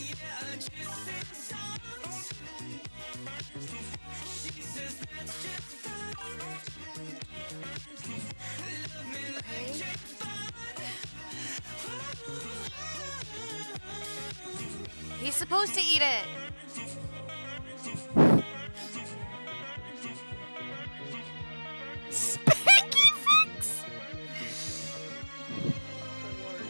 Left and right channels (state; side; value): inverted; both; correlation -1.00